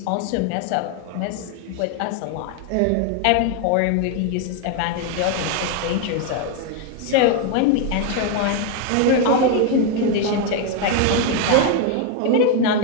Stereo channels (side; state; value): both; different; correlation 0.01